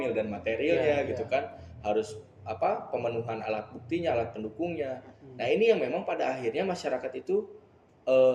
dan materialnya gitu kan. Harus pemenuhan alat buktinya, alat pendukungnya. Nah, ini yang memang pada akhirnya masyarakat itu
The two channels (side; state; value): both; identical; correlation 1.00